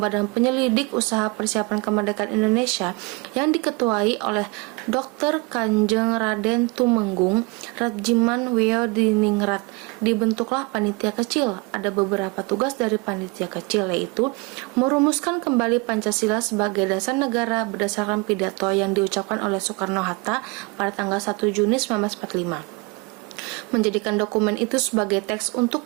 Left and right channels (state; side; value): quieter; left; 27.2 dB